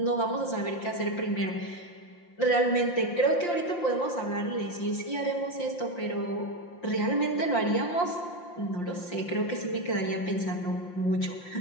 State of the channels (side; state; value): right; late; 5.7 ms